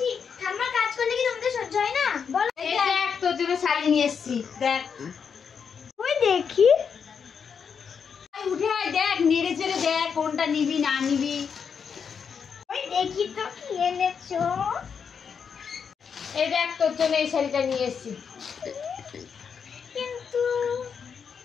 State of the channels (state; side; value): quieter; right; 6.6 dB